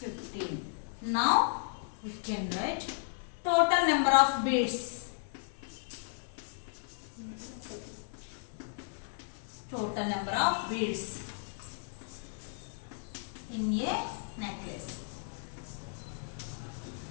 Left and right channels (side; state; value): right; silent; 55 dB below the other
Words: Now we can write total number of beads. Total number of beads in a necklace.